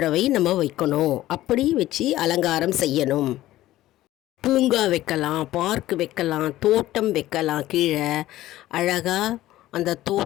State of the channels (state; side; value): quieter; right; 15.2 dB